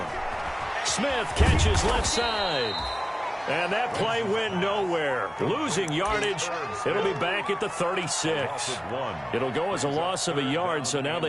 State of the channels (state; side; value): identical; both; correlation 1.00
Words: Smith catches left side. And that play went nowhere. Losing yardage. It'll be back at the 36. It'll go as a loss of a yard, so now